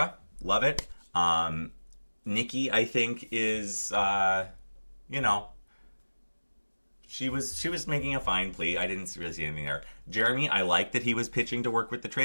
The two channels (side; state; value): both; inverted; correlation -1.00